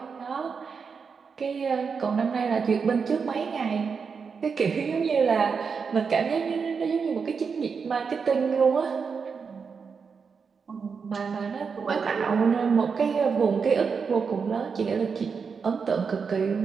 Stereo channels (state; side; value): quieter; left; 5.7 dB